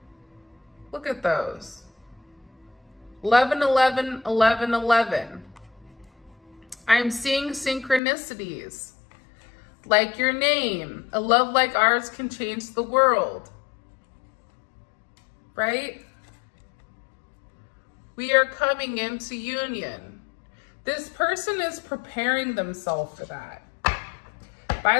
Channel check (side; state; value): right; drops out; at 8.0 s